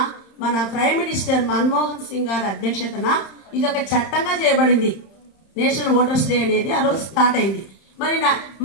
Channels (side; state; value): right; late; 31 ms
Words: మన ప్రైమ్ మినిస్టర్ మన్మోహన్ సింగ్ గారి అధ్యక్షతన ఇది ఒక చట్టంగా చేయబడింది. నేషనల్ ఓటర్స్ డే అనేది ఆ రోజు స్టార్ట్ అయింది. మరి